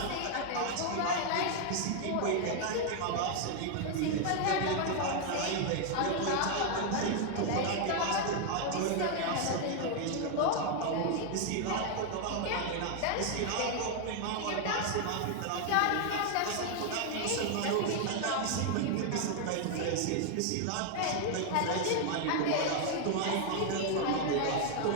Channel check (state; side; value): different; both; correlation 0.00